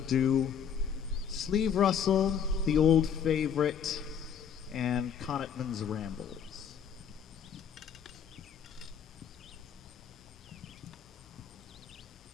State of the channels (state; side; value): quieter; right; 7.7 dB